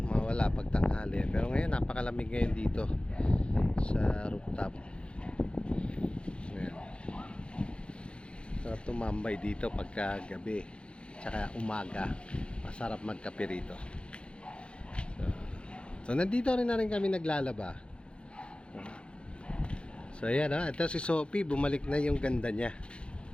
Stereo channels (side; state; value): right; late; 0.057 ms